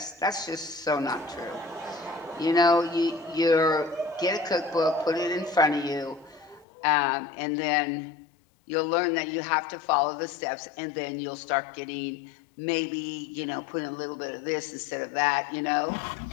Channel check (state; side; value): drops out; right; at 6.7 s